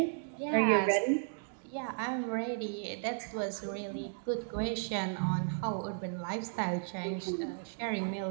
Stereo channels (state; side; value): silent; left; digital silence